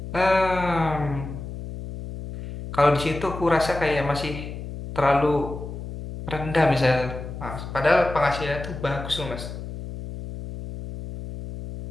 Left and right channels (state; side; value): noise; left; hum, 9 dB below the sound